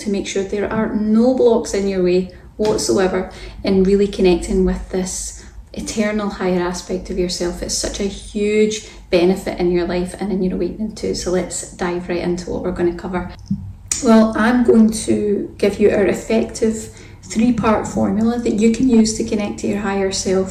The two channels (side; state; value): both; identical; correlation 1.00